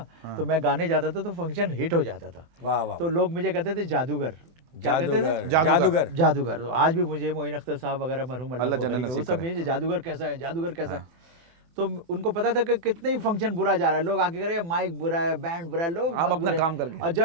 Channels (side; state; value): left; late; 24 ms